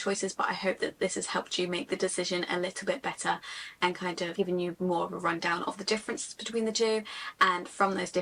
but I hope that this has helped you make the decision a little bit better and kind of given you more of a rundown of the differences between the two, and from those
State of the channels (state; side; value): identical; both; correlation 1.00